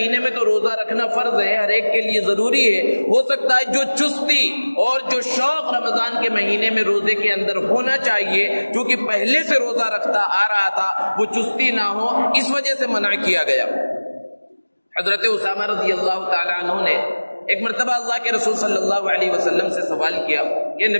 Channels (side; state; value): both; inverted; correlation -1.00